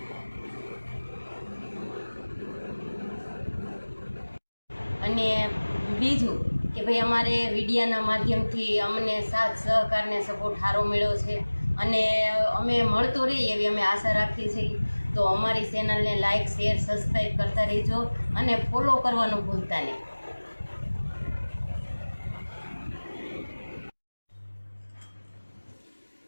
અને બીજું કે ભાઈ અમારે વિડીયાના માધ્યમથી અમને સાથ સહકારને સપોર્ટ સારો મળ્યો છે અને અમે મળતો રહીએ એવી અમે આશા રાખીએ છીએ। તો અમારી ચેનલને લાઇક, શેર, સબસ્ક્રાઈબ કરતા રહેજો અને ફોલો કરવાનું ભૂલતા નહીં।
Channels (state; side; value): inverted; both; correlation -1.00